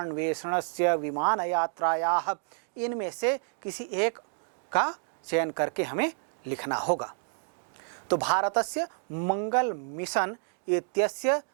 विमानयात्रायाः, इनमें से किसी एक का चयन करके हमें लिखना होगा। तो भारतस्य मंगल मिशन इत्यस्य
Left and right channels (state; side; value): silent; left; digital silence